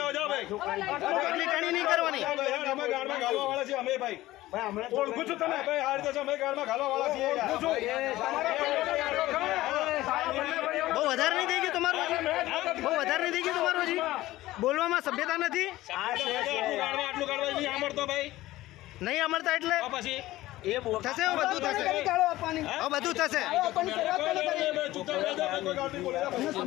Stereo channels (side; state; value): right; quieter; 16.7 dB